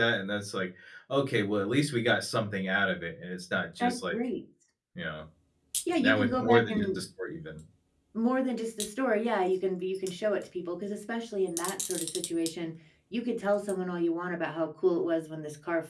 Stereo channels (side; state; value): both; identical; correlation 1.00